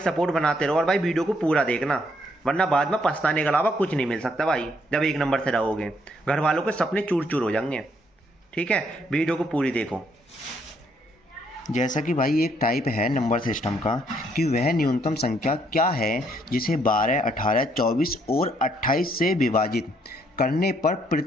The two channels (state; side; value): normal; both; correlation 0.70